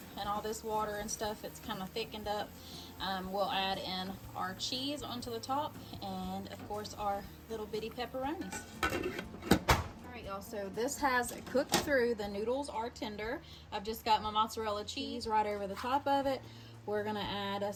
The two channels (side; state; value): both; identical; correlation 1.00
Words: and all this water and stuff, it's kind of thickened up, we'll add in our cheese onto the top and, of course, our little bitty pepperonis. Alright y'all, so this has cooked through. The noodles are tender. I've just got my mozzarella cheese right over the top of it. We're going to add